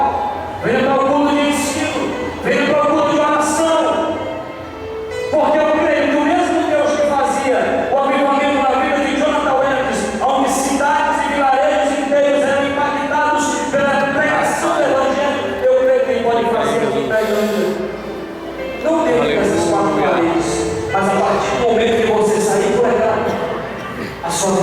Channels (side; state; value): both; identical; correlation 1.00